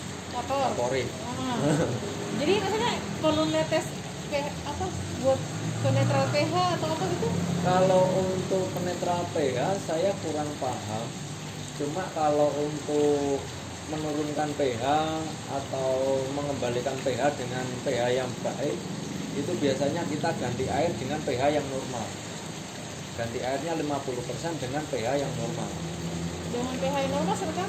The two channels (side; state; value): both; identical; correlation 1.00